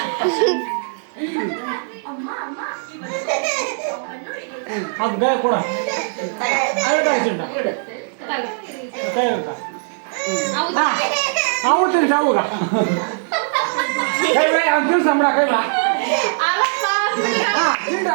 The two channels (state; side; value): silent; left; digital silence